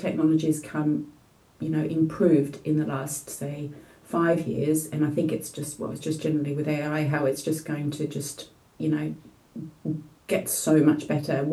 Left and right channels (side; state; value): both; identical; correlation 1.00